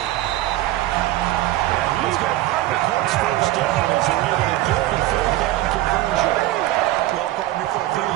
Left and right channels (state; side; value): quieter; left; 16.0 dB